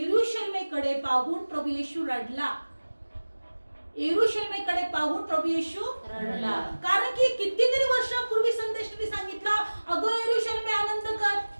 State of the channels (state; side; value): inverted; both; correlation -1.00